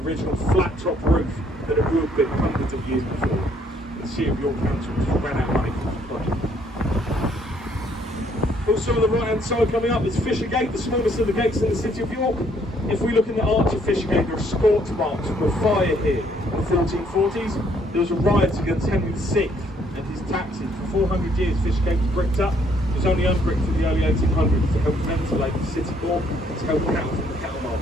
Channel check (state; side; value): normal; both; correlation 0.66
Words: flat top roof that it would have been hundreds of years before. The City of York Council just ran out of money for the project. Also on the right hand side coming up is Fishergate, the smallest of the gates in the City of York. If we look in the arch of Fishergate, there are scorch marks from a fire here in the 1440s. There was a riot against Henry VI and his taxes. For 400 years, Fishergate was bricked up. It was only unbricked in the early 1800s to help ventilate the city more and to help cattle from the cattle